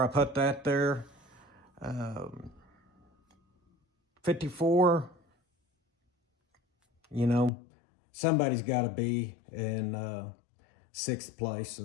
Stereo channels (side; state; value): right; drops out; at 7.5 s